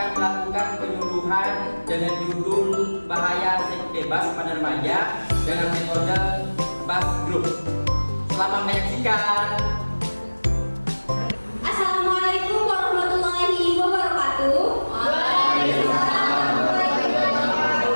akan melakukan penyuluhan dengan judul bahaya seks bebas pada remaja dengan metode Bas Group. Selamat menyaksikan. Assalamualaikum warahmatullahi wabarakatuh.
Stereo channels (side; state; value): both; inverted; correlation -1.00